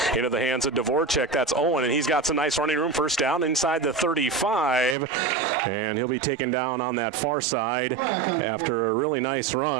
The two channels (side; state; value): left; drops out; at 5.0 s